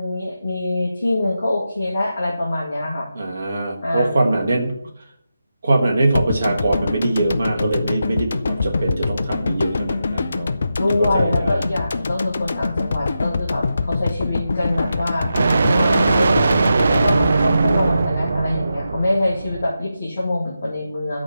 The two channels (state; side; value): inverted; both; correlation -0.88